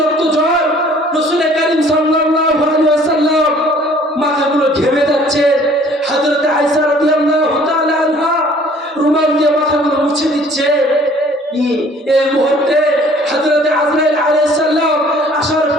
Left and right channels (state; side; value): normal; both; correlation 0.55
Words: জ্বর, রাসূল কারীম সাল্লাল্লাহু আলাইহি ওয়াসাল্লাম মাথাগুলো ঘেমে যাচ্ছে। হযরত আয়েশা রাদিয়াল্লাহু তাআলা আনহা রুমাল দিয়ে মাথাগুলো মুছে দিচ্ছে। এই মুহূর্তে হযরত আজরাইল আলাইহিস সালাম আসার